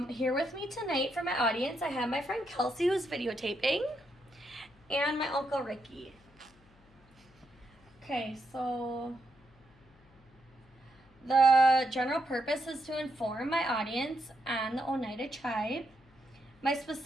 Here with me tonight for my audience, I have my friend Kelsey who's videotaping and my Uncle Ricky. Okay, so the general purpose is to inform my audience on the Oneida tribe. My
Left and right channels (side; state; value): left; noise; hum, 29 dB below the sound